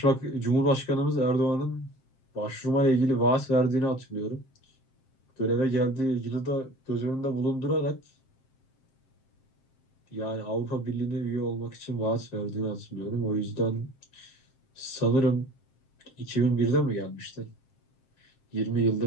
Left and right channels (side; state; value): right; late; 7.6 ms